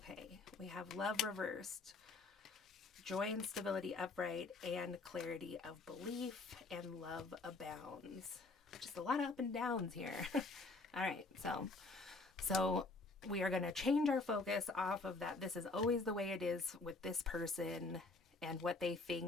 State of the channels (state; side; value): quieter; right; 3.5 dB